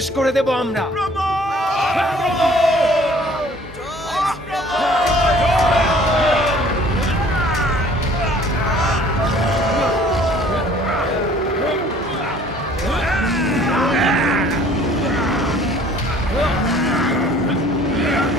করে দেব আমরা।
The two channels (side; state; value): both; normal; correlation 0.54